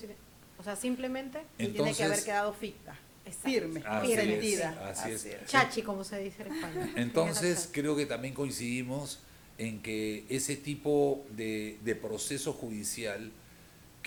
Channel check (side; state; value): both; identical; correlation 1.00